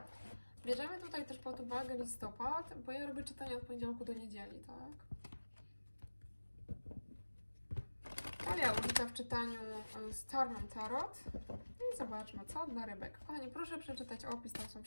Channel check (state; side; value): inverted; both; correlation -1.00